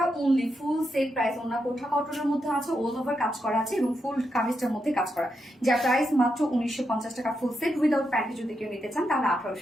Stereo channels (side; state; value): both; normal; correlation 0.84